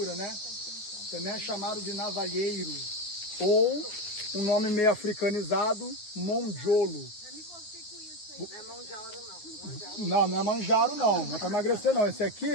né? Também é chamado de navalheiro, ou um nome meio africanizado, monjolo. Não é manjaro, não. Não, não é manjaro, não. Não é para emagrecer, não. Esse aqui,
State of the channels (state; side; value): late; right; 9.6 ms